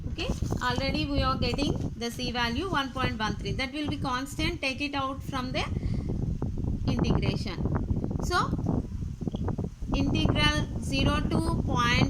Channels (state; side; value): identical; both; correlation 1.00